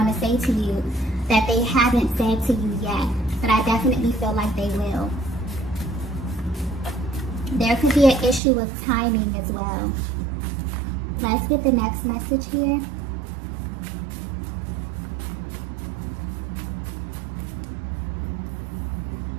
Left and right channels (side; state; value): left; drops out; at 8.4 s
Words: to say to you that they haven't said to you yet. But I definitely feel like they will. There could be an issue of timing as well. Let's get the next message here.